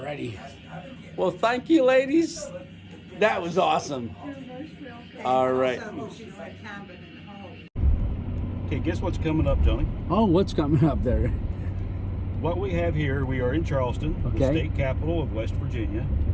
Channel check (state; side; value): identical; both; correlation 1.00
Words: Well, thank you, ladies. That was awesome. All right. Okay, guess what's coming up, Tony? Oh, what's coming up there? What we have here, we are in Charleston, the Okay. state capital of West Virginia.